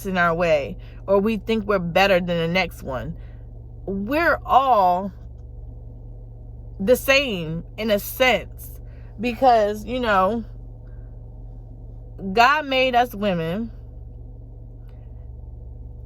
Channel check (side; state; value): both; identical; correlation 1.00